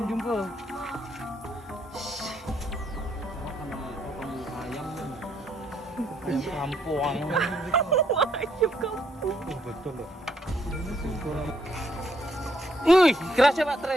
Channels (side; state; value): both; normal; correlation 0.71